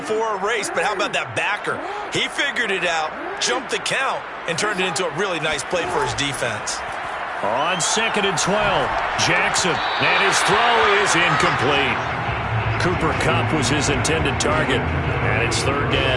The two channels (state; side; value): identical; both; correlation 1.00